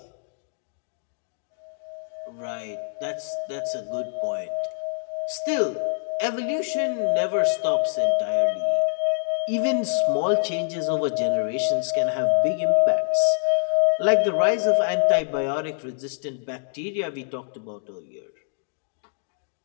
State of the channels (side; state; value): right; silent; digital silence